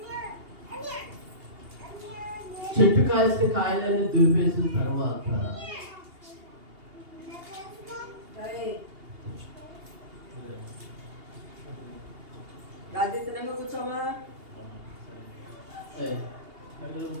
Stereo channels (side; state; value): left; late; 2.8 ms